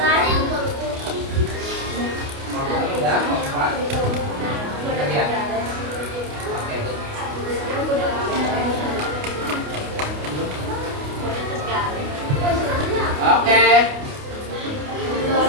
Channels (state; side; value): late; left; 28 ms